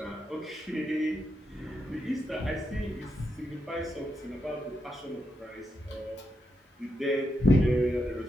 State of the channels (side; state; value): both; normal; correlation 0.84